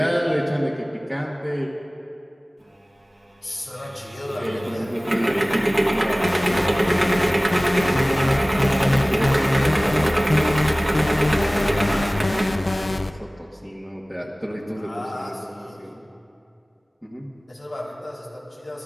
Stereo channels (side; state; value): both; normal; correlation 0.98